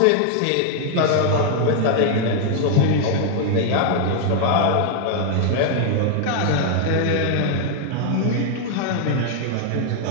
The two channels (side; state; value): both; different; correlation 0.00